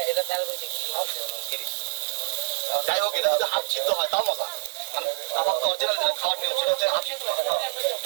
এটা তেল বইতে কি যাই হোক, এটা যদি হাফ সিদ্ধ হয় তাও মজা। মানে কাবাব তো অরিজিনাল যেটা খাওয়ার নিয়ম সেটা হচ্ছে হাফ সিদ্ধ হয়।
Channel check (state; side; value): silent; left; 61 dB below the other